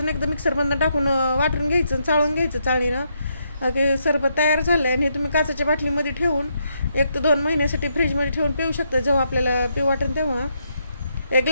एकदा मिक्सरमधून टाकून वाटून घ्यायचं, चाळून घ्यायचं चाळणीनं. की सरबत तयार झालं आहे आणि हे तुम्ही काचेच्या बाटलीमध्ये ठेवून 1 ते 2 महिन्यासाठी फ्रीजमध्ये ठेवून पिऊ शकता, जेव्हा आपल्याला पिऊ वाटेल तेव्हा. 1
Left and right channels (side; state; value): both; inverted; correlation -0.78